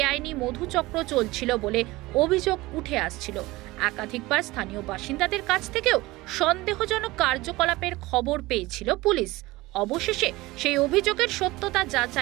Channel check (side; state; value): left; quieter; 20.0 dB